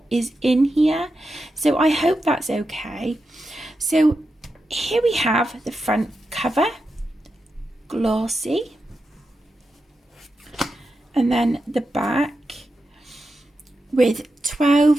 is in here. So I hope that's okay. So here we have the front cover, glossy, and then the back with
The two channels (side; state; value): both; normal; correlation 0.88